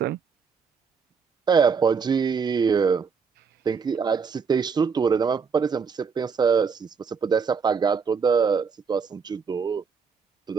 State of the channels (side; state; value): left; quieter; 5.8 dB